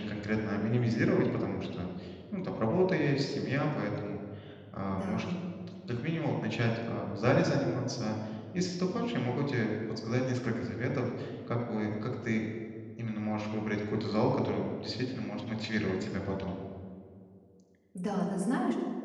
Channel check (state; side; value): identical; both; correlation 1.00